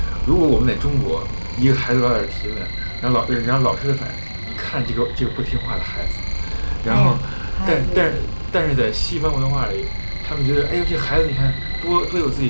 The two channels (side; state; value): both; inverted; correlation -1.00